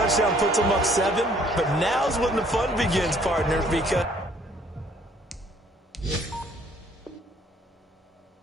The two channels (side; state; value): both; normal; correlation 0.61